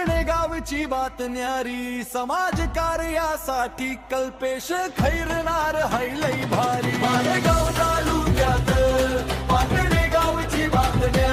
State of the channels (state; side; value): identical; both; correlation 1.00